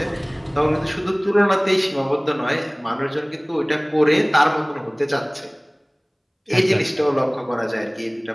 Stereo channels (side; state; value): both; identical; correlation 1.00